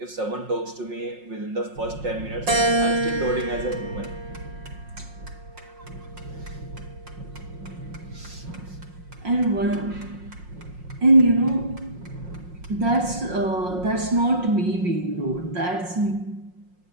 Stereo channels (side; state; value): left; late; 5.6 ms